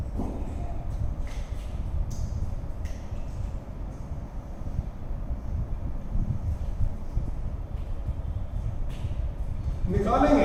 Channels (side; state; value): both; identical; correlation 1.00